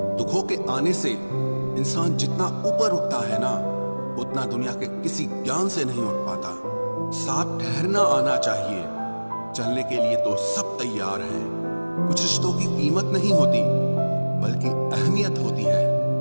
दुखों के आने से इंसान जितना ऊपर उठता है ना, उतना दुनिया के किसी ज्ञान से नहीं उठ पाता। साथ ठहरना आना चाहिए, चलने के लिए तो सब तैयार हैं। कुछ रिश्तों की कीमत नहीं होती बल्कि अहमियत होती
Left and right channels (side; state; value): both; inverted; correlation -1.00